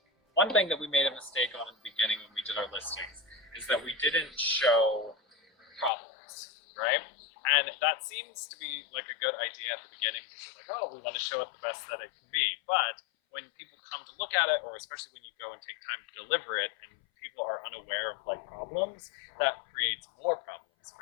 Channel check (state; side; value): drops out; right; at 5.9 s